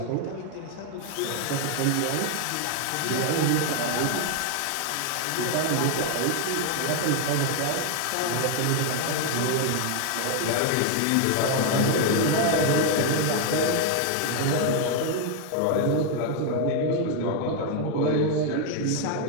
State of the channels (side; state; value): both; different; correlation 0.01